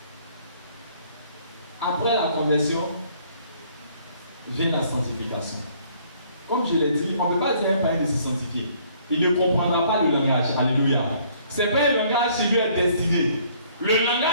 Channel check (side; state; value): both; inverted; correlation -0.62